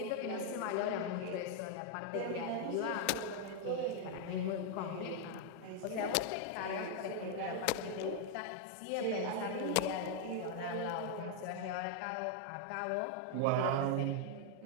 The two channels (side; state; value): both; different; correlation 0.00